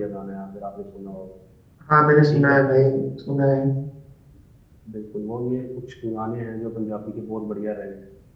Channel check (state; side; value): identical; both; correlation 1.00